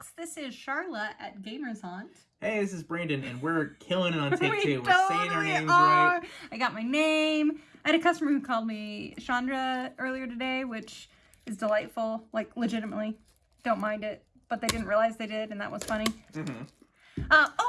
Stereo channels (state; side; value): identical; both; correlation 1.00